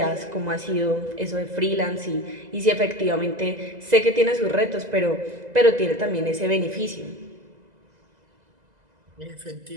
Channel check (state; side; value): late; left; 2.0 ms